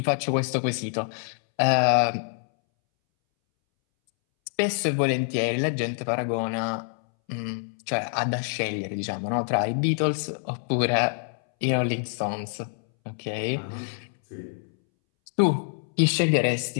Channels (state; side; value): silent; right; 61 dB below the other